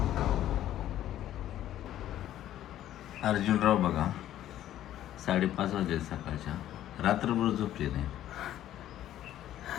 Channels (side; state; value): right; quieter; 12.4 dB